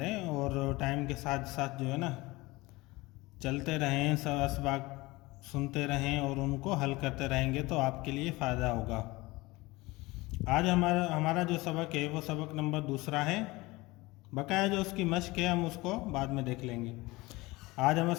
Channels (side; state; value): right; quieter; 21.5 dB